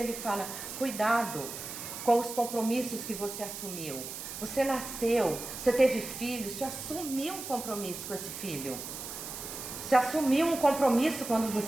fala, cuidado com os compromissos que você assumiu. Você nasceu, você teve filho, você assumiu um compromisso com esse filho. Você assumiu um compromisso quando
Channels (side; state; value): right; noise; hiss, 8 dB below the sound